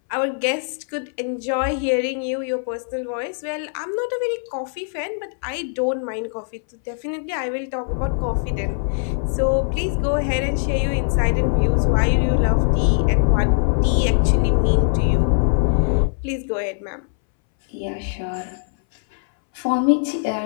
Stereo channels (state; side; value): silent; right; 62 dB below the other